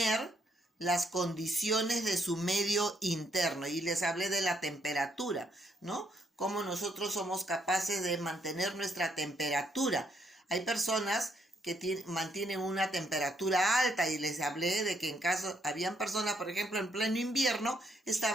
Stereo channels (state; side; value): normal; both; correlation 0.73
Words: las condiciones de su medio interno. Y les hablé de la temperatura, ¿no? Cómo nosotros somos capaces de mantener nuestra temperatura. Hay personas que mantienen una temperatura alta, y les hablé de que habían personas, por ejemplo, en pleno invierno,